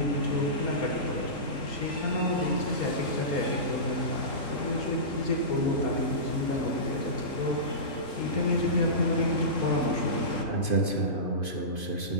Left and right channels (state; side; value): late; right; 3.8 ms